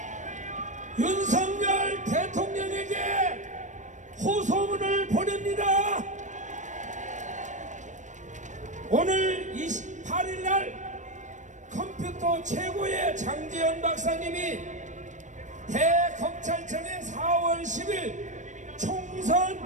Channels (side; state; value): left; late; 0.35 ms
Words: 윤석열 대통령에게 호소문을 보냅니다. 오늘 28일날 컴퓨터 최고의 장재현 박사님이 대검찰청에 4월 10일